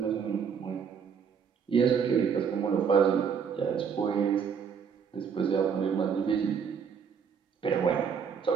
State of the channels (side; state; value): left; quieter; 6.8 dB